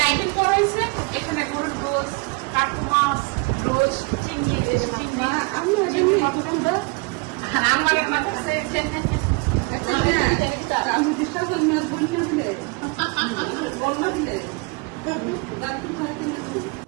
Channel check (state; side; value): quieter; left; 29.1 dB